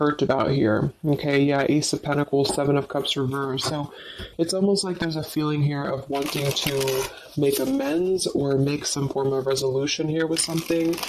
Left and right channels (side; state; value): both; identical; correlation 1.00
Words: about here. Okay, yeah, Ace of Pentacles, Seven of Cups reversed. So it's almost like there's a feeling here of wanting to make amends or make some form of resolution here with something.